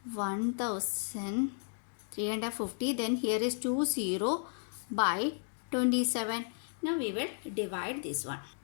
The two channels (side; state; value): right; silent; digital silence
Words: 1350. Then here is 2 0 by 27. Now we will divide this one.